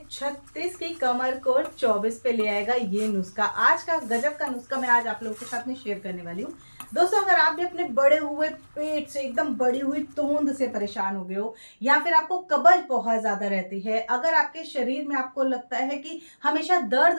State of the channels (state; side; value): inverted; both; correlation -1.00